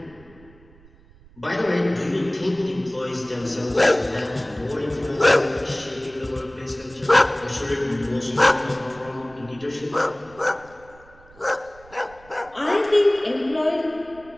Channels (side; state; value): right; noise; rumble, 25 dB below the sound